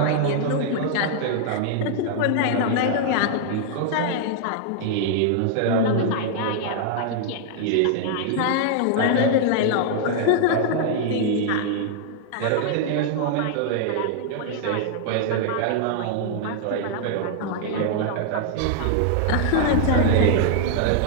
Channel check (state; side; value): different; both; correlation 0.00